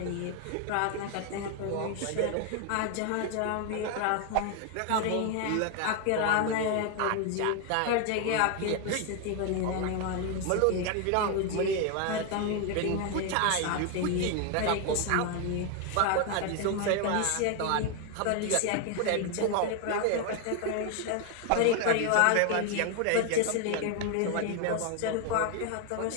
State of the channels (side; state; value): both; different; correlation 0.01